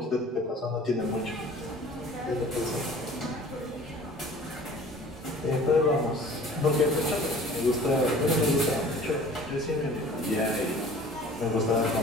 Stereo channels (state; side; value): normal; both; correlation 0.47